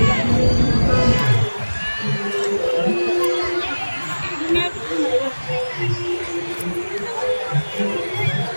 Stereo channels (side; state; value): both; inverted; correlation -1.00